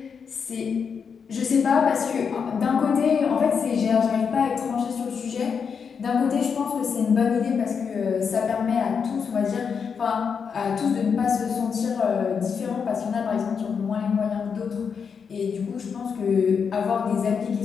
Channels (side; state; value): right; quieter; 6.3 dB